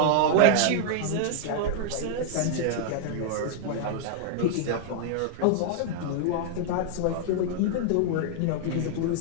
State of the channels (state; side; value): different; both; correlation -0.01